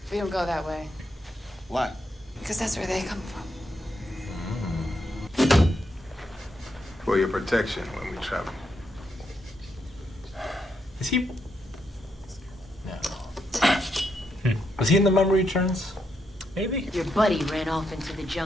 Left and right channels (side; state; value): both; normal; correlation 0.80